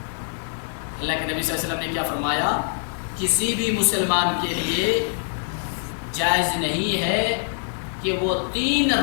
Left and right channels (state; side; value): silent; right; digital silence